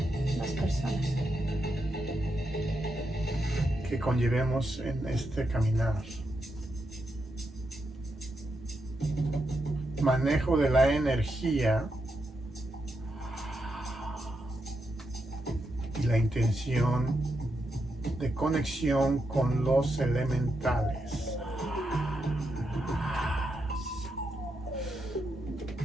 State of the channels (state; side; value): normal; both; correlation 0.84